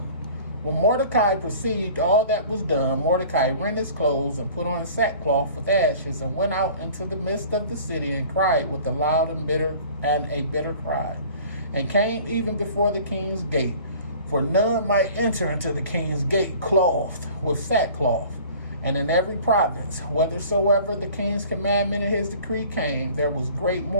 When Mordecai perceived all that was done, Mordecai rent his clothes and put on sackcloth with ashes, and went out into the midst of the city and cried with a loud and a bitter cry, and came even before the king's gate. For none might enter into the king's gate clothed with sackcloth. And in every province, whithersoever the king's commandment and his decree came, there was great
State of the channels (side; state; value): both; inverted; correlation -0.47